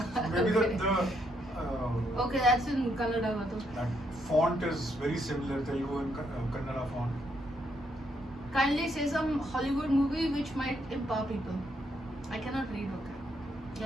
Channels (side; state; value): both; normal; correlation 0.75